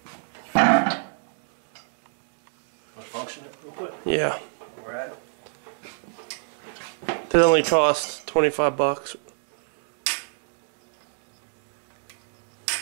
Want to function it real quick? Yeah. Where we're at? That only cost 25 bucks.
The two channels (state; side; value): silent; left; digital silence